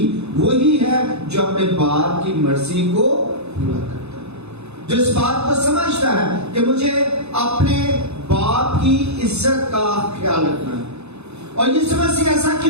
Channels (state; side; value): late; left; 0.80 ms